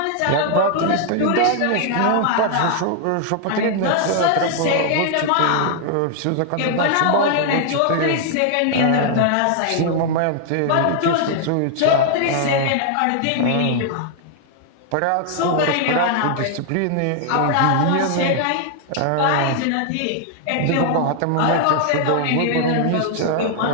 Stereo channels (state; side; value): different; both; correlation 0.00